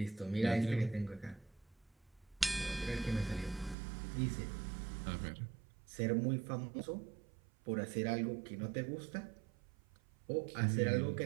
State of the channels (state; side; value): drops out; left; at 3.8 s